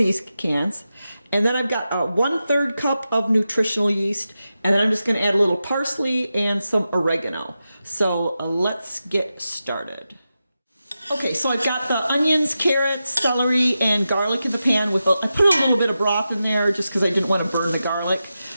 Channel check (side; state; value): both; inverted; correlation -0.91